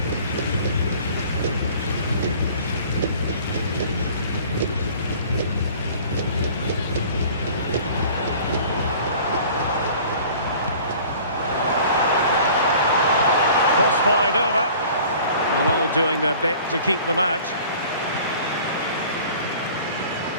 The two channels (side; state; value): both; inverted; correlation -0.47